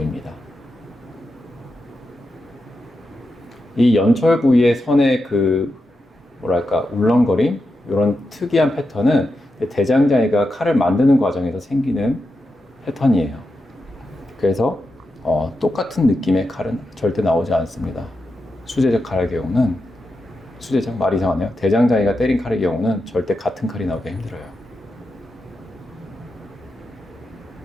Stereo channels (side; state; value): both; normal; correlation 0.88